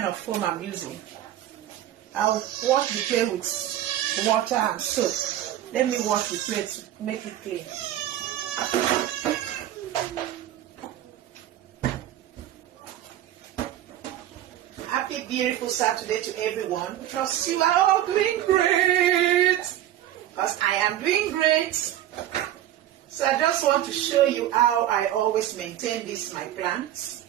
of foam I'm using. I'll wash the plate with water and soap. Let me wash the plate to make it clean. Happy beautiful Saturday to everyone. Trust you are all doing great. Because I am doing great. So I just want to show you how I always maintain my plants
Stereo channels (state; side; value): quieter; left; 12.5 dB